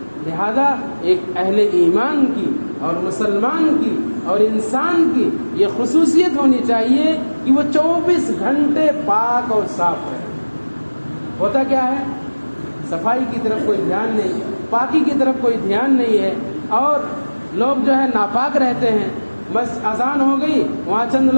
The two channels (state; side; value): inverted; both; correlation -1.00